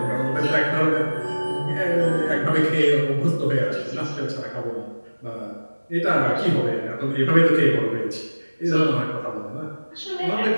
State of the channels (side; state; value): both; inverted; correlation -1.00